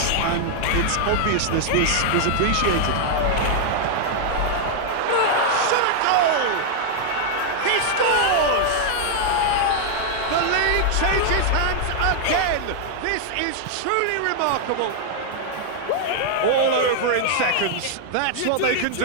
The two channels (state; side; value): different; both; correlation 0.00